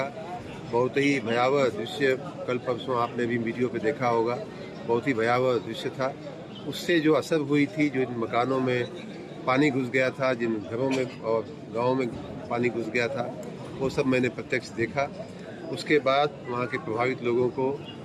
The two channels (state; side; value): identical; both; correlation 1.00